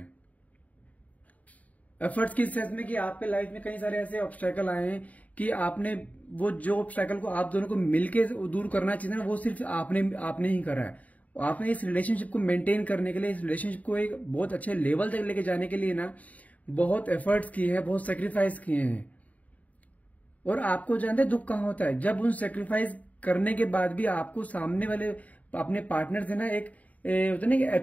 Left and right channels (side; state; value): right; late; 0.071 ms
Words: एफर्ट्स किस सेंस में कि आपके लाइफ में कई सारे ऐसे ऑब्स्टेकल आए हैं कि आपने वो जो ऑब्स्टेकल को आप दोनों को मिलके दूर करना चाहिए ना, वो सिर्फ आपने ही करा है। आपने इस रिलेशनशिप को मेंटेन करने के लिए, इस रिलेशनशिप को एक बहुत अच्छे लेवल तक लेके जाने के लिए ना बहुत एफर्ट्स किए हैं, बहुत सेक्रीफाइस किए हैं। और आपको जानते हैं दुख कहां होता है, जब उन सेक्रीफाइस करने के बाद भी आपको सामने वाले अपने पार्टनर से ना एक होता है ना